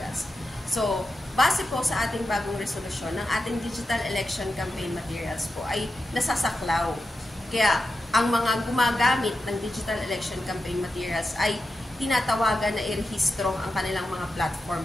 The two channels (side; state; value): both; normal; correlation 0.89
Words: So, base po sa ating bagong resolusyon, ng ating digital election campaign materials po ay nasasaklaw. Kaya, ang mga gumagamit ng digital election campaign materials ay tinatawagan na irehistro ang kanilang mga